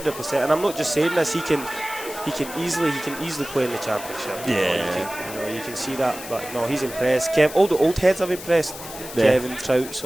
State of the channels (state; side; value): noise; left; hiss, 12 dB below the sound